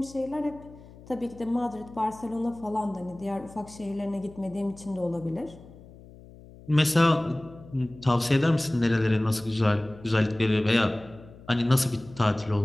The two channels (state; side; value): noise; left; hum, 20 dB below the sound